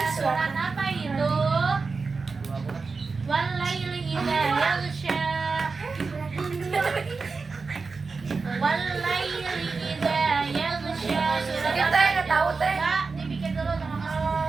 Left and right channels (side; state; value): left; quieter; 4.4 dB